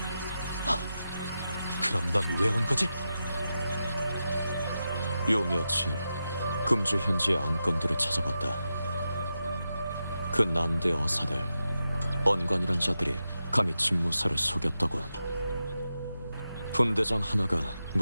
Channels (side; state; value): both; inverted; correlation -0.89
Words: 그럼 넌 왜 온 거지? 요 며칠 금주 현지의 안건들을 찾아봤다. 그 난대 어사들, 언관이란 자들이 감히 집무사를 속였다고. 분대장 하나가